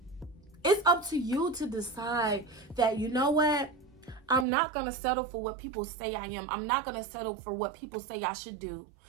It's up to you to decide that, you know what? I'm not going to settle for what people say I am. I'm not going to settle for what people say I should do.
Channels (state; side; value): drops out; left; at 4.5 s